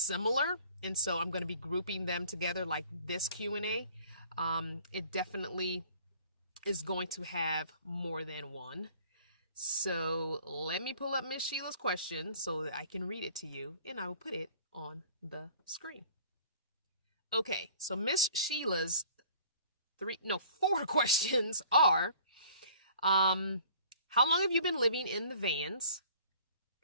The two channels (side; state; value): both; inverted; correlation -0.51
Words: and so I'm going to be grouping them together like this Q&A. It definitely is going to have more than one. So let me pull up Miss Sheila's question so that I can read it to you, and I will put it on the screen. Okay, so Miss Sheila's four questions are, how long have you been living in the vans?